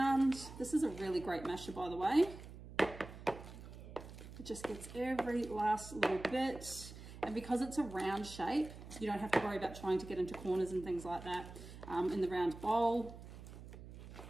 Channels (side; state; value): right; noise; hum, 14 dB below the sound